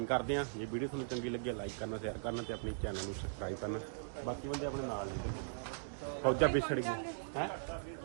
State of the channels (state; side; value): silent; left; digital silence